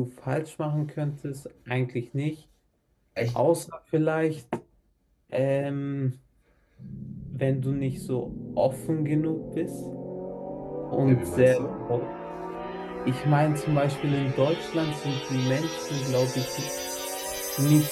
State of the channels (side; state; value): both; identical; correlation 1.00